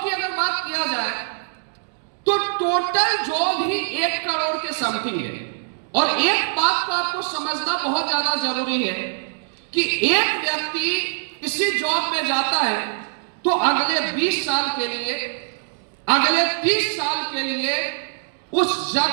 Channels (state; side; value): silent; left; digital silence